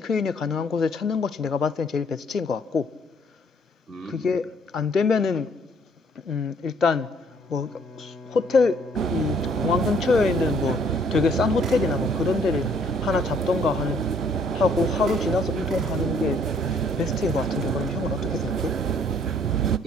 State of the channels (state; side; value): normal; both; correlation 0.62